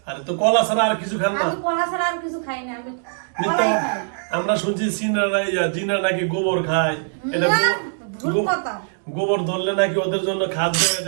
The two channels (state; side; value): silent; left; digital silence